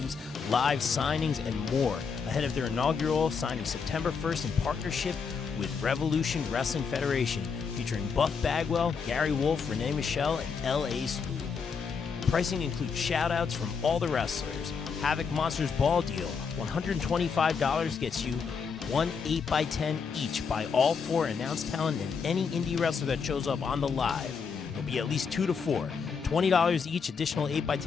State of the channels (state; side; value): quieter; right; 5.7 dB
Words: live signings, and more ahead of their inaugural signing September 1st in partnership with Revolution Wrestling Federation, featuring Buff Bagwell, Gary Wolf, Renee Michelle, and L.A. Spoon. Pricing includes shout-outs from all the wrestlers. Havoc Monsters Ball Deal, $125 gets you one 8x10 each by all four announced talent and any indie wrestler that shows up on the live. There'll be at least 2 to 4. $20 each, additional